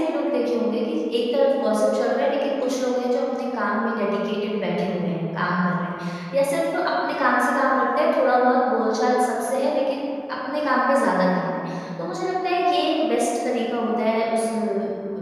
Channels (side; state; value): both; identical; correlation 1.00